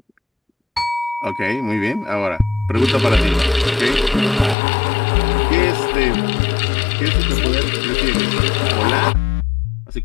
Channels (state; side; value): drops out; right; at 4.5 s